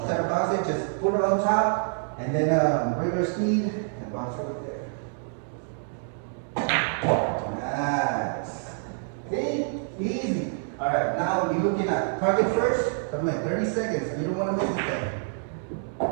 of bounce it, just put it on top, and then regular speed, and bounce it right there. Nice. See? Easy. Alright, now you're looking at target first. Come in, 30 seconds. You don't want to miss anything.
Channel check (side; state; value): left; silent; 60 dB below the other